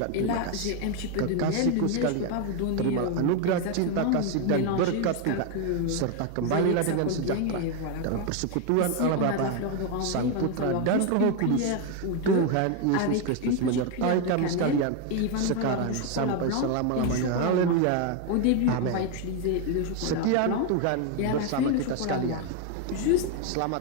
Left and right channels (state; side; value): different; both; correlation 0.01